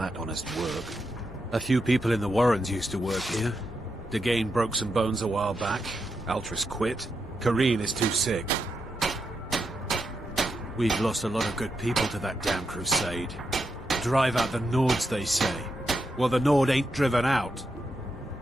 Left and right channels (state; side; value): normal; both; correlation 0.84